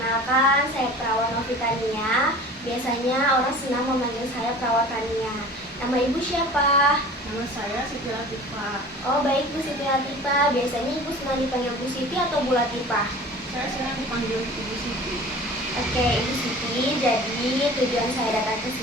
saya Perawat Novitania. Biasanya orang senang memanggil saya Perawat Tania. Nama Ibu siapa? Nama saya Siti Latifah. Oh baik, Bu Siti Latifah. Biasanya Ibu senang dipanggil Bu Siti atau Bu Latifah? Saya senang dipanggil Ibu Siti. Oke, Ibu Siti. Jadi tujuan saya datang ke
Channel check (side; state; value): both; normal; correlation 0.41